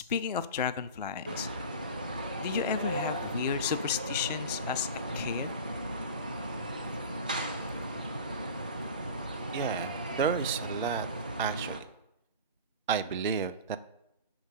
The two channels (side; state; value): both; inverted; correlation -0.33